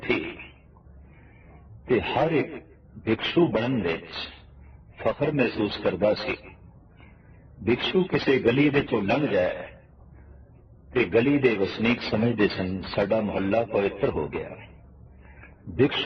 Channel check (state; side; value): identical; both; correlation 1.00